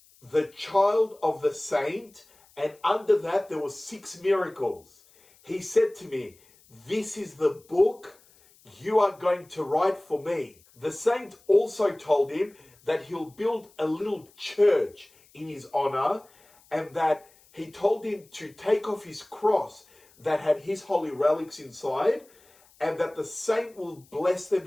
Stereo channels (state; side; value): noise; left; hiss, 29 dB below the sound